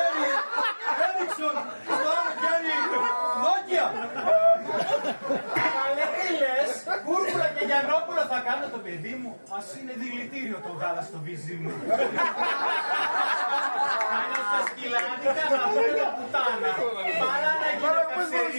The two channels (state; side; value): inverted; both; correlation -1.00